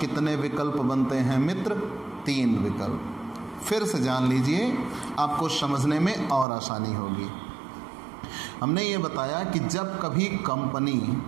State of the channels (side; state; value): left; drops out; at 6.5 s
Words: कितने विकल्प बनते हैं मित्र? 3 विकल्प। फिर से जान लीजिए, आपको समझने में और आसानी होगी। हमने ये बताया कि जब कभी कंपनी